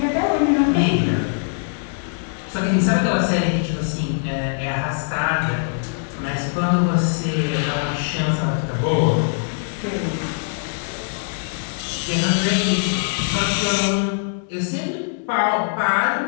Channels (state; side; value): silent; right; digital silence